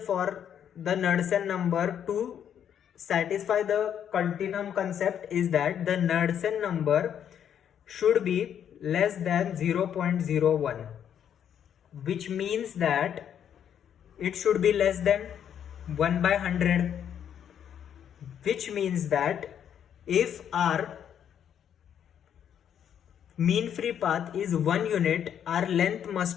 the Knudsen number to satisfy the continuum concept? Is that the Knudsen number should be less than 0.01, which means that it should be less than 1 by 100, which means that if our mean free path is 1 unit, our length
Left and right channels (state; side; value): quieter; right; 9.1 dB